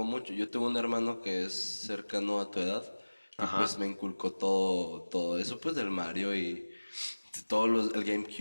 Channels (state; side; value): inverted; both; correlation -1.00